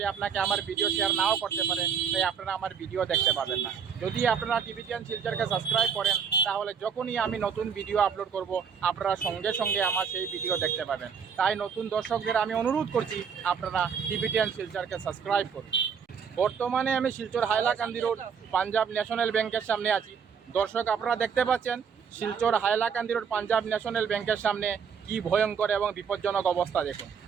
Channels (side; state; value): left; quieter; 6.8 dB